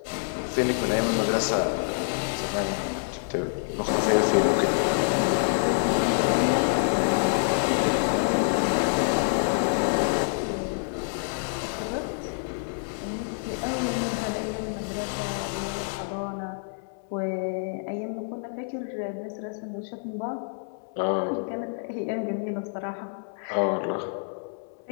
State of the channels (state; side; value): silent; right; 60 dB below the other